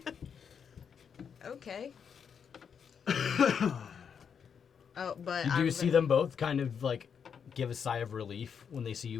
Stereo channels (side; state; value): right; quieter; 7.0 dB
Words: Okay. Oh, but You do see them both kind of like give a sigh of relief when they see